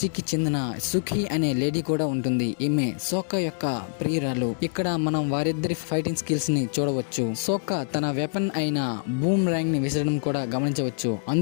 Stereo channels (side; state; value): right; silent; digital silence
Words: చెందిన సుఖి అనే లేడీ కూడా ఉంటుంది. ఈమె సోక్కా యొక్క ప్రియురాలు. ఇక్కడ మనం వారిద్దరి ఫైటింగ్ స్కిల్స్ ని చూడవచ్చు. సోక్కా తన వెపన్ అయిన బూమ్ ర్యాంగ్ ని విసరడం కూడా గమనించవచ్చు.